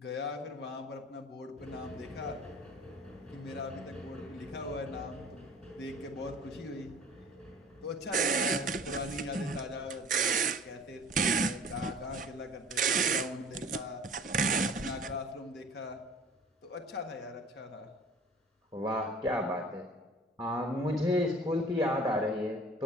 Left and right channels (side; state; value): both; normal; correlation 0.47